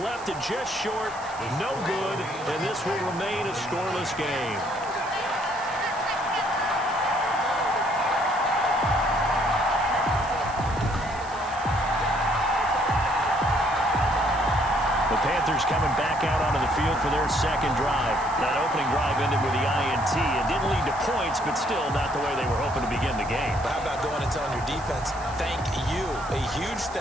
it just short, no good, and this will remain a scoreless game. The Panthers coming back out onto the field for their second drive. That opening drive ended with the INT. It didn't lead to points, but still not the way they were hoping to begin the game. But how about going and telling your defense, thank you, a huge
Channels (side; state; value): right; noise; hiss, 19 dB below the sound